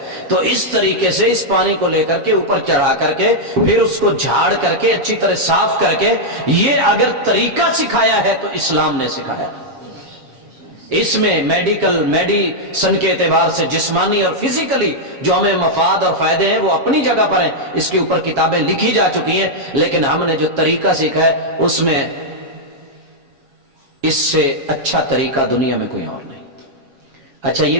تو اس طریقے سے اس پانی کو لے کر کے اوپر چڑھا کر کے پھر اس کو جھاڑ کر کے اچھی طرح صاف کر کے, یہ اگر طریقہ سکھایا ہے تو اسلام نے سکھایا. اس میں میڈیسن کے اعتبار سے جسمانی اور فزیکلی جو ہمیں مفاد اور فائدے ہیں وہ اپنی جگہ پر ہیں, اس کے اوپر کتابیں لکھی جا چکی ہیں, لیکن ہم نے جو طریقہ سیکھا ہے اس میں اس سے اچھا طریقہ دنیا میں کوئی اور نہیں. اچھا یہ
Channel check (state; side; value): late; left; 7.3 ms